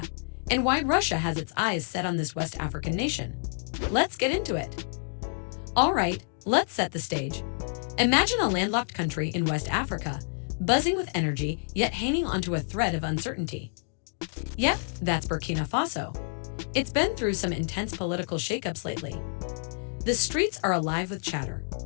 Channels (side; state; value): right; silent; digital silence